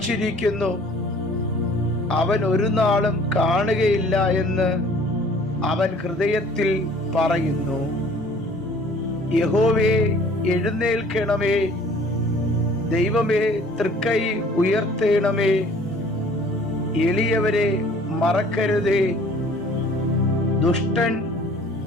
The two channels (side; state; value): both; normal; correlation 0.53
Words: അവൻ ഒരു നാളും കാണുകയില്ല എന്ന് അവൻ ഹൃദയത്തിൽ പറയുന്നു. യഹോവേ, എഴുന്നേൽക്കണമേ. ദൈവമേ, തൃക്കൈ ഉയർത്തേണമേ. എളിയവരെ മറക്കരുതേ. ദുഷ്ടൻ